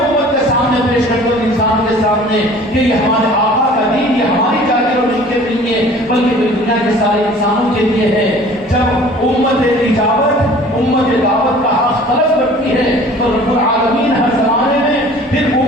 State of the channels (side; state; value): both; normal; correlation 0.48